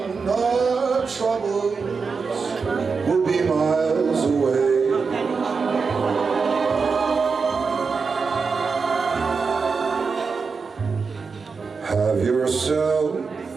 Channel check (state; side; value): quieter; left; 5.0 dB